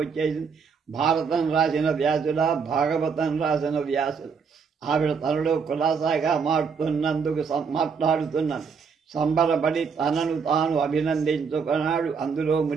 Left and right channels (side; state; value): left; quieter; 5.8 dB